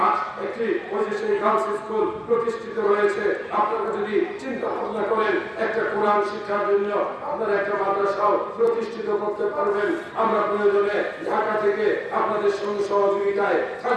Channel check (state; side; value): identical; both; correlation 1.00